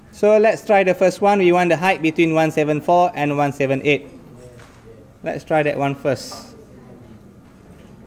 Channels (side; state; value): both; identical; correlation 1.00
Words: So let's try the first one. We want the height between 174 and 178. Let's try that one first.